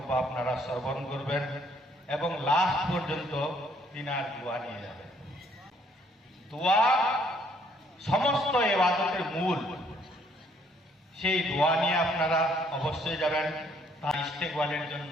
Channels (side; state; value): both; normal; correlation 0.66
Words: আপনারা শ্রবণ করবেন এবং লাস্ট পর্যন্ত তিনার দোয়া নিয়ে যাবেন। দোয়া সমস্ত ইবাদতের মূল, সেই দোয়া নিয়ে আপনারা অবশ্যই যাবেন। তার ইস্তেকবালের